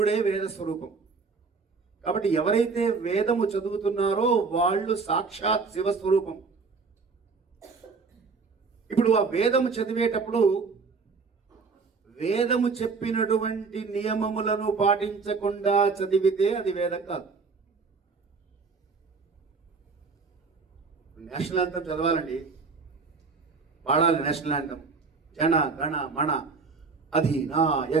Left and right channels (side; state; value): left; quieter; 4.7 dB